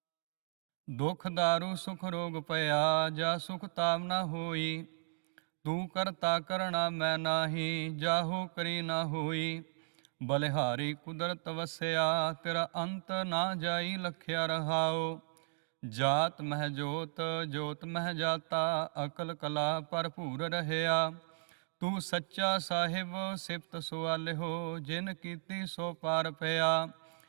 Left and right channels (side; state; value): left; silent; digital silence